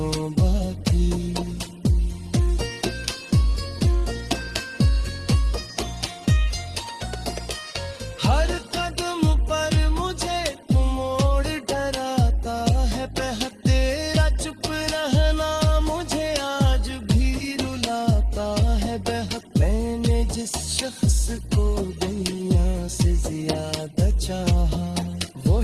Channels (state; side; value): identical; both; correlation 1.00